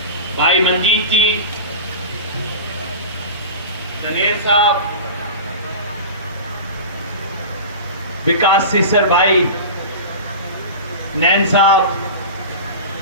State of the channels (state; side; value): inverted; both; correlation -0.31